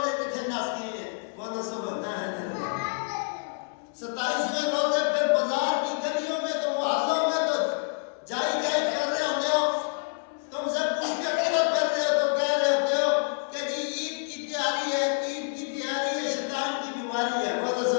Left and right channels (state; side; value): silent; right; 60 dB below the other